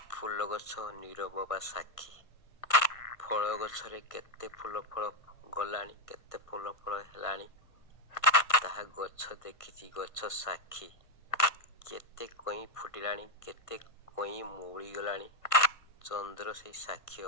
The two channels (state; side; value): late; right; 1.5 ms